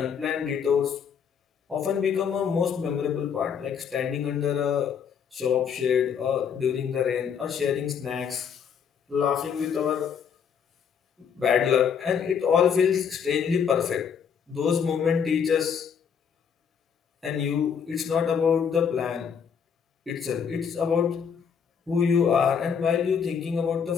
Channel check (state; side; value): quieter; right; 7.1 dB